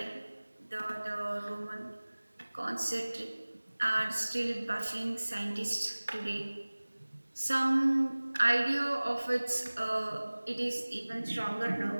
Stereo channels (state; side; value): inverted; both; correlation -1.00